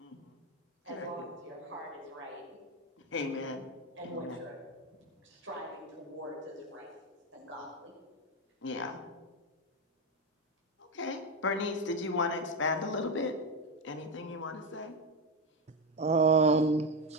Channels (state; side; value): normal; both; correlation 0.12